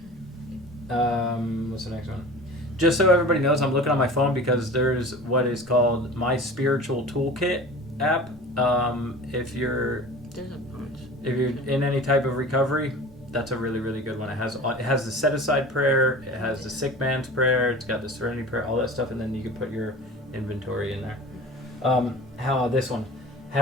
there. What's the next one? Just so everybody knows, I'm looking on my phone because there's what is called My Spiritual Toolkit app. If you're There's a bunch. If you're in any type of recovery, that's a really, really good one. It has the set aside prayer, it has the sick man's prayer, it's got the serenity prayer, all that stuff, and then you can put your inventory in there. This one?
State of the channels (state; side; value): normal; both; correlation 0.38